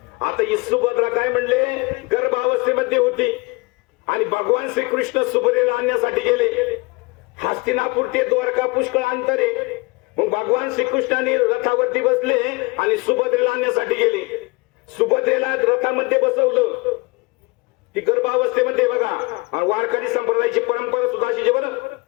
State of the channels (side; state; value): right; quieter; 25.9 dB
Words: आता ही सुभद्रा काय म्हणले, गर्भावस्थेमध्ये होती आणि भगवान श्रीकृष्ण सुभद्रेला आणण्यासाठी गेले. हस्तिनापूर ते द्वारका पुष्कळ अंतर आहे. मग भगवान श्रीकृष्णाने रथावरती बसले आणि सुभद्रेला आणण्यासाठी गेले. सुभद्रेला रथामध्ये बसवलं. ती गर्भावस्थेमध्ये बघा. आणि वारकरी संप्रदायाची परंपरा सुद्धा अशी बरं.